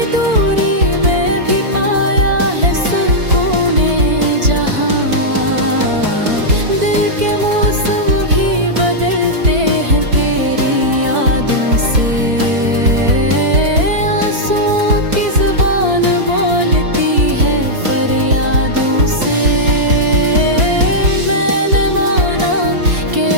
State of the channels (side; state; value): left; late; 4.5 ms